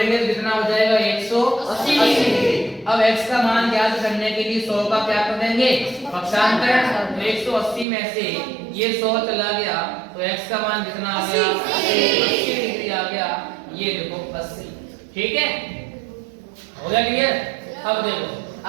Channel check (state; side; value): drops out; left; at 7.9 s